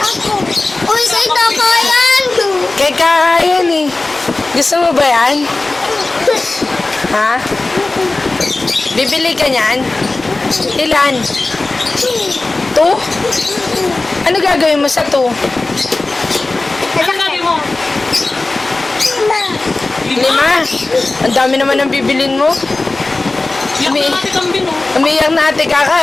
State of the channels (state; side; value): quieter; right; 3.2 dB